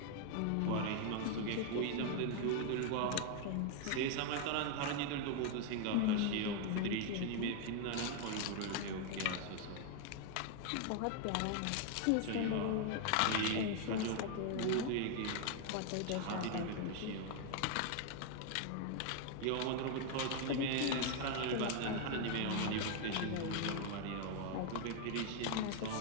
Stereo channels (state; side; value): different; both; correlation 0.00